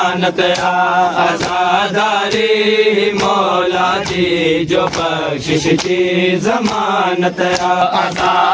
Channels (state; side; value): identical; both; correlation 1.00